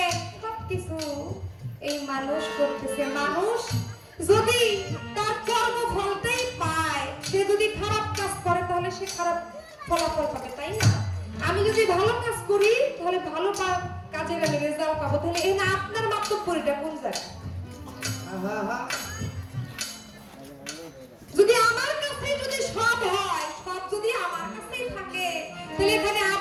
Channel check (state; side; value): identical; both; correlation 1.00